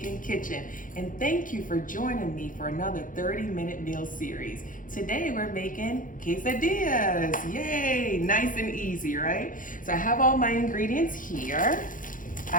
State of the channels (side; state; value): right; late; 0.39 ms